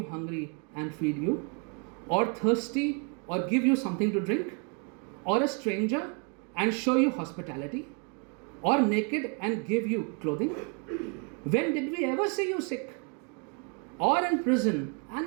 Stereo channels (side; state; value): left; quieter; 35.6 dB